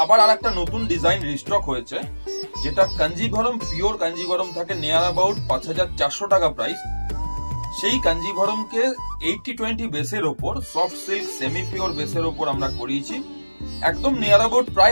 আবার আর একটা নতুন ডিজাইন রিস্টক হয়েছে, যেটা কাঞ্জিভরম পিওর কাঞ্জিভরম থাকে, নিয়ার অ্যাবাউট ৫,৪০০ টাকা প্রাইস। সেই কাঞ্জিভরমকে 80-20 বেসের ওপর সফট সিল্ক সেমি পিওর বেসের ওপর আমরা করিয়েছি, একদম নিয়ার অ্যাবাউট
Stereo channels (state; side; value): inverted; both; correlation -1.00